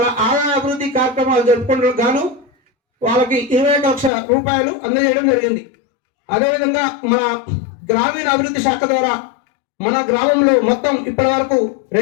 ఆదాయ అభివృద్ధి కార్యక్రమాలు జరుపుకుంటూ గాను వాళ్ళకి 21 లక్షల రూపాయలు అందజేయడం జరిగింది. అదేవిధంగా మన గ్రామీణ అభివృద్ధి శాఖ ద్వారా మన గ్రామంలో మొత్తం ఇప్పటి వరకు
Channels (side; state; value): right; drops out; at 4.1 s